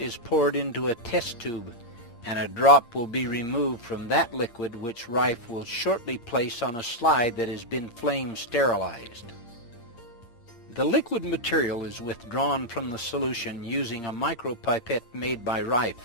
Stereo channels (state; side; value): late; right; 8.6 ms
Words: poured into a test tube, and a drop will be removed from that liquid, which Raiff will shortly place on a slide that has been flame sterilized. The liquid material is withdrawn from the solution using a micropipette made by Raiff,